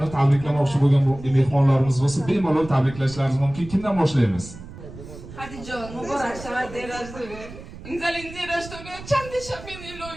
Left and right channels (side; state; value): right; noise; rumble, 15 dB below the sound